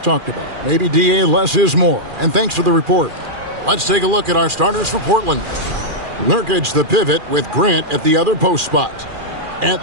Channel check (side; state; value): left; late; 2.4 ms